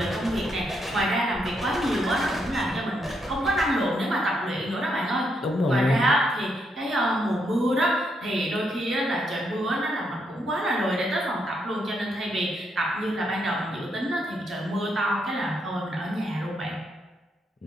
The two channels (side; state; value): both; normal; correlation 0.78